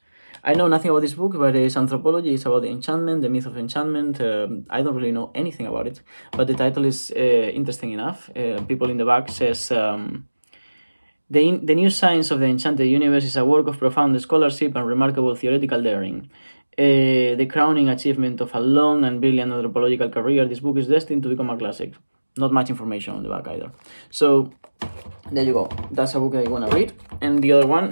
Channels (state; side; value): inverted; both; correlation -1.00